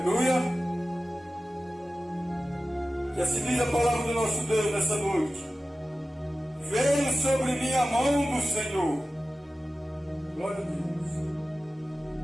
E assim diz a palavra do nosso Deus nessa noite: veio sobre mim a mão do Senhor. Glória a Deus.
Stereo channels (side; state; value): both; normal; correlation 0.95